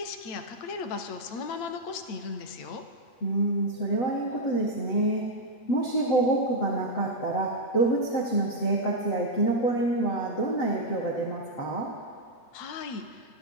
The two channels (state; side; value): late; right; 8.8 ms